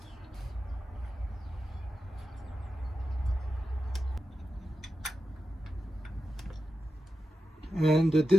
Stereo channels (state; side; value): normal; both; correlation 0.90